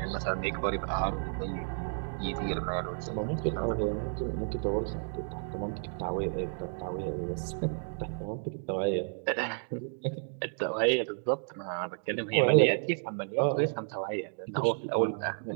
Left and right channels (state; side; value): silent; left; digital silence